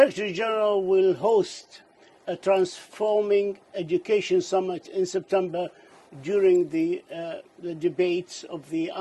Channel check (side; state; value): both; identical; correlation 1.00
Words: General will host a Transforming Education Summit in September during the debates of the